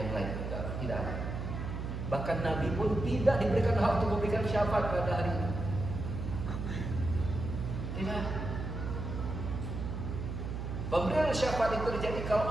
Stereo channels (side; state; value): right; noise; hum, 5 dB below the sound